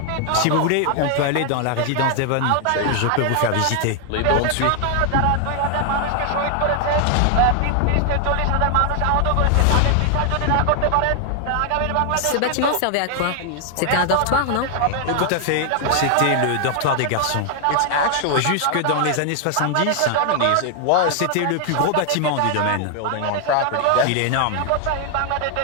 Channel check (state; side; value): different; both; correlation 0.00